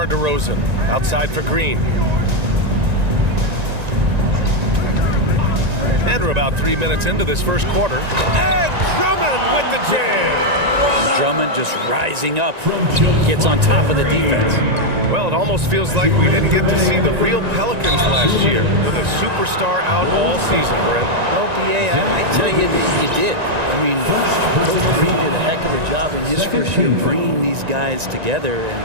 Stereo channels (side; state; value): left; late; 1.9 ms